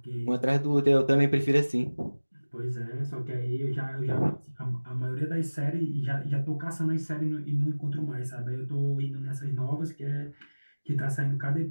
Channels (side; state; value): both; inverted; correlation -1.00